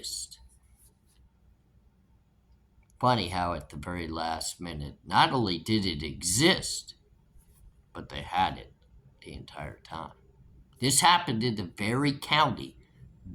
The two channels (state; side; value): identical; both; correlation 1.00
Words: Funny how at the very last minute, not only did it exist, but they had it the entire time. This happened in the very county